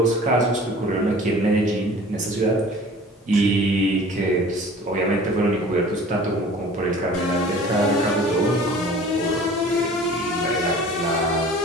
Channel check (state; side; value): normal; both; correlation 0.45